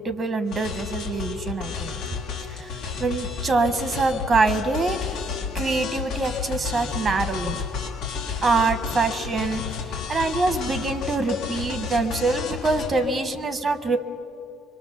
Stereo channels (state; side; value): normal; both; correlation 0.69